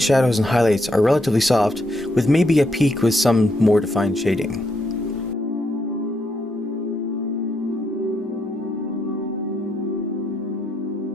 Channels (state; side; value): normal; both; correlation 0.77